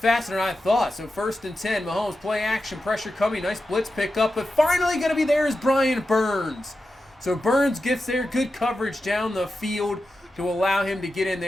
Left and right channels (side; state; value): both; normal; correlation 0.91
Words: faster than I thought. So 1st and 10, Mahomes play action, pressure coming, nice blitz pickup, but finally going to be there is Brian Burns. So Burns gets there, good coverage down the field to allow him to get in